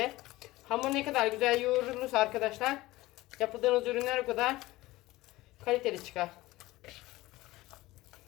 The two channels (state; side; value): quieter; right; 18.6 dB